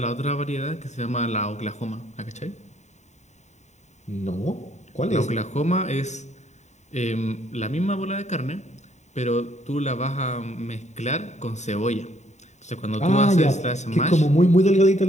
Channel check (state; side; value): late; right; 0.34 ms